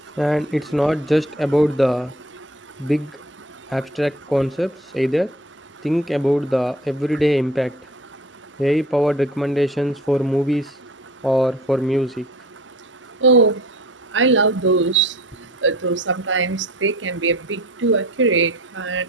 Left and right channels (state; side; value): normal; both; correlation 0.45